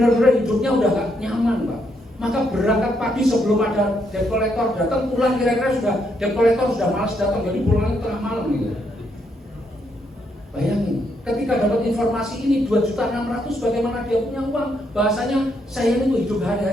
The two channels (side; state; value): both; normal; correlation 0.76